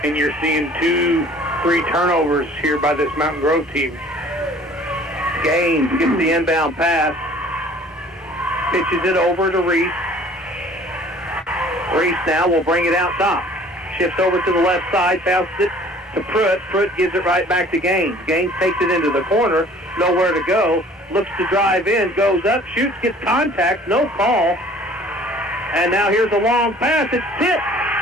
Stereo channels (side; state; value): both; normal; correlation 0.51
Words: and you're seeing 2-3 turnovers here by this Mountain Grove team. Gaines gets the inbound pass. Pitches it over to Reese. Reese now will bring it out top. Shifts over to the left side, passes it to Pruitt. Pruitt gives it right back to Gaines. Gaines takes it into the corner, nowhere to go. Looks to drive in, goes up, shoots, gets contact, no call. And now here's a long pass. It's tipped.